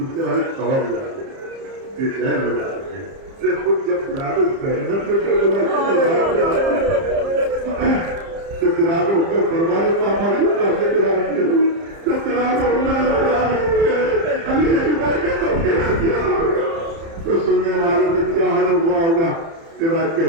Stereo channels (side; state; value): left; late; 30 ms